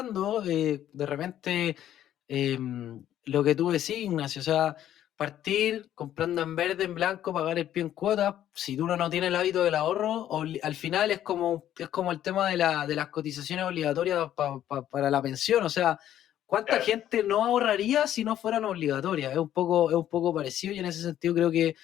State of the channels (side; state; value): right; quieter; 11.6 dB